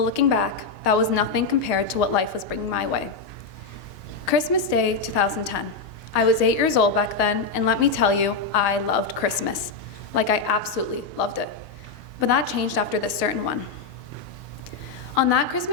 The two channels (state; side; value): quieter; right; 4.4 dB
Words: looking back, that was nothing compared to what life was bringing my way. Christmas Day 2010. I was 8 years old back then, and let me tell you, I loved Christmas. Like, I absolutely loved it. But that changed after this certain one. On that